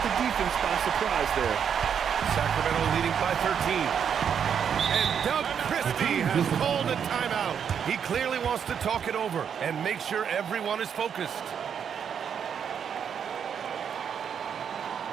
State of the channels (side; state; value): left; quieter; 7.7 dB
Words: the defense by surprise there. Sacramento leading by 13. And Doug Christie has called a timeout. He clearly wants to talk it over and make sure everyone is focused.